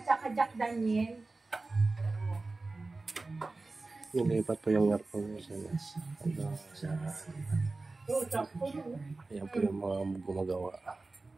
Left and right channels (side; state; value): left; quieter; 3.4 dB